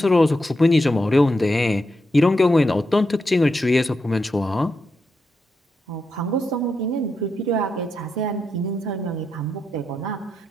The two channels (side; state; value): both; normal; correlation 0.84